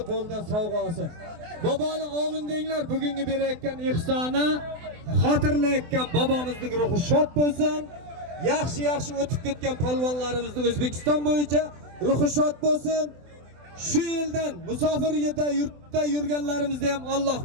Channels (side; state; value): left; late; 24 ms